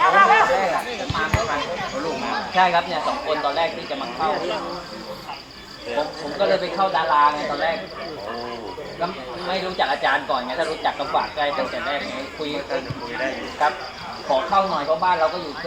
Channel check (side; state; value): both; identical; correlation 1.00